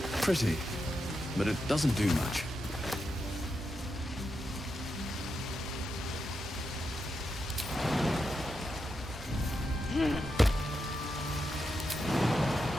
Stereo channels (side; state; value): both; normal; correlation 0.86